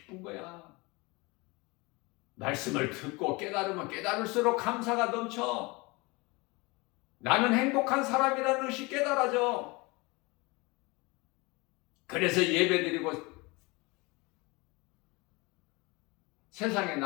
거야. 말씀을 듣고 깨달으면 깨달을수록 감사가 넘쳐. 나는 행복한 사람이라는 것이 깨달아져. 그래서 예배드리고 세상에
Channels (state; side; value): quieter; right; 25.4 dB